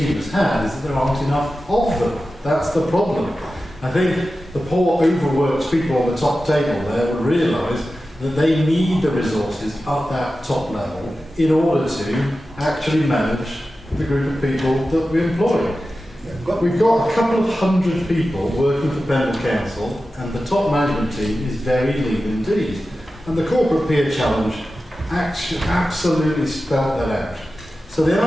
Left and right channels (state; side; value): normal; both; correlation 0.93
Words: has had is that there aren't enough of them. That's the problem. I think the poor overworked people on the top table there will realise that they need the resources at that top level in order to actually manage the group of people that we employ. We've got a couple of hundred people working for Pendle Council, and the top management team is very lean indeed. And the corporate peer challenge actually absolutely spelled that out. So the